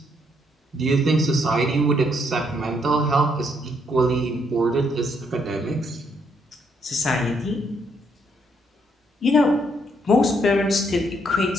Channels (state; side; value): normal; both; correlation 0.72